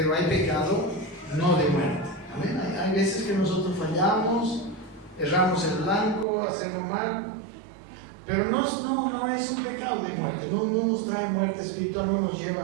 hay pecado no de muerte. Amén. Hay veces que nosotros fallamos, erramos el blanco, hacemos mal, Pero no es un pecado de muerte, no nos trae muerte espiritual, no nos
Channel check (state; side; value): drops out; left; at 6.2 s